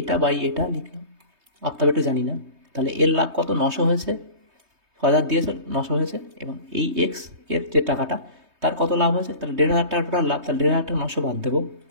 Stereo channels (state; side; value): late; left; 3.2 ms